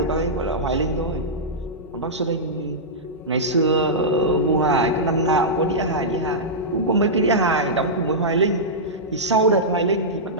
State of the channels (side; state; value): both; normal; correlation -0.12